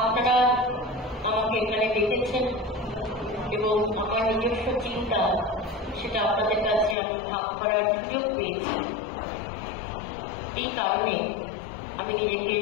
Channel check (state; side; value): drops out; right; at 7.0 s